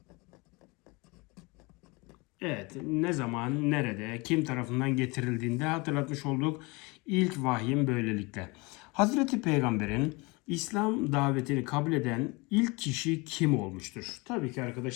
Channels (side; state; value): right; quieter; 26.3 dB